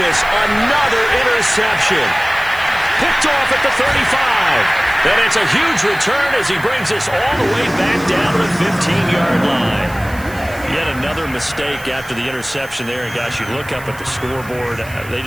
another interception. Picked off at the 35. And it's a huge return as he brings us all the way back down to the 15-yard line. Yet another mistake after the interception there. And, gosh, you look up at the scoreboard, they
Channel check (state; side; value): noise; right; hiss, 19 dB below the sound